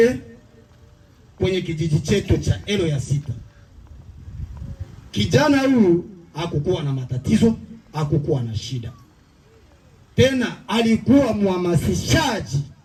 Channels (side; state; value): both; identical; correlation 1.00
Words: kwenye kijiji chetu cha Elo ya Sita. Kijana huyu hakukuwa na matatizo, hakukuwa na shida. Tena alikuwa mhamasishaji